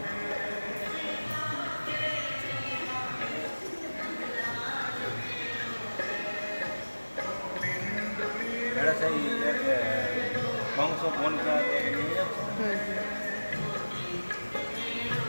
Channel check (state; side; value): inverted; both; correlation -1.00